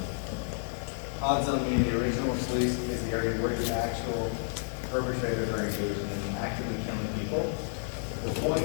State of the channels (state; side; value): silent; right; digital silence